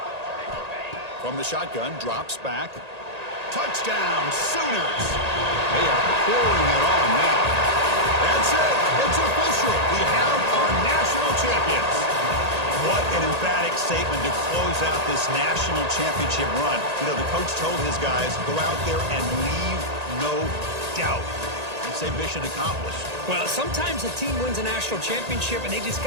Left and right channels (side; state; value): left; late; 1.8 ms